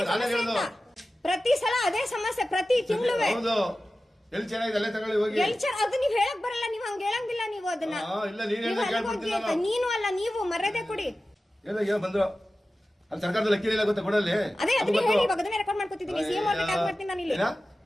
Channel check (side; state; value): both; normal; correlation 0.95